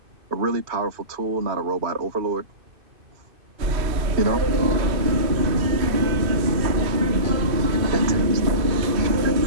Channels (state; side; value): late; left; 2.5 ms